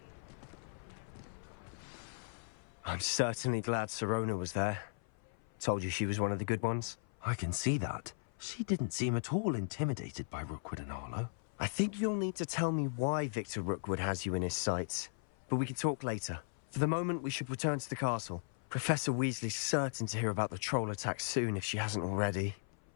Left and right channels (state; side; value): silent; right; 53 dB below the other